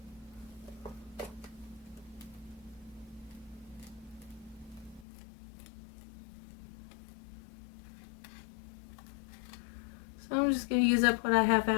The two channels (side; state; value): right; drops out; at 5.1 s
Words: So I'm just going to use up what I have